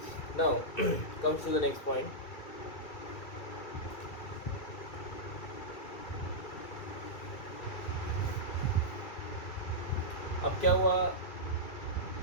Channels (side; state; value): right; late; 2.3 ms